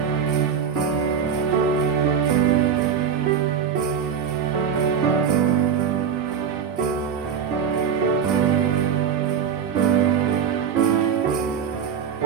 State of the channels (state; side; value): quieter; left; 7.4 dB